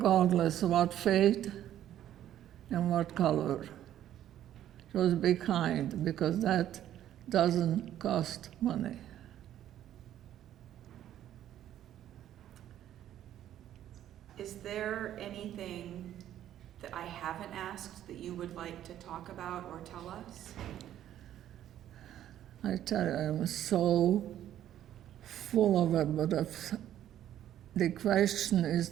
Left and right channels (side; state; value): left; quieter; 11.6 dB